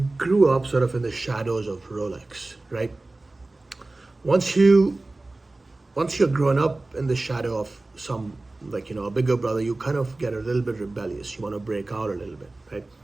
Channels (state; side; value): quieter; left; 3.0 dB